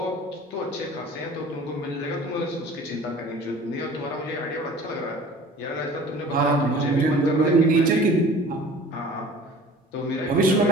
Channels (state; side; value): normal; both; correlation 0.45